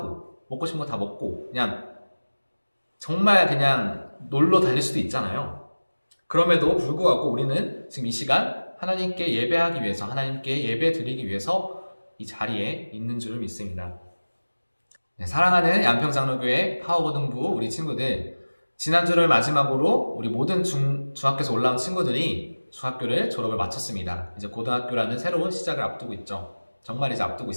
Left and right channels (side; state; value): both; inverted; correlation -1.00